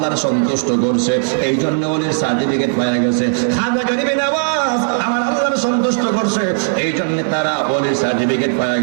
সন্তুষ্ট করছে, এই জন্য ওলির সার্টিফিকেট পাওয়া গেছে। খাজা গরিবে নওয়াজ আমার আল্লাহর সন্তুষ্ট করছে, এই জন্য তারা ওলির সার্টিফিকেট পাওয়া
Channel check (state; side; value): silent; left; digital silence